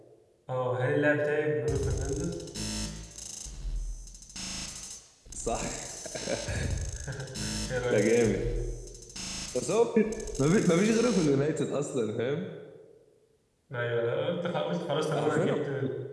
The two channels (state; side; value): identical; both; correlation 1.00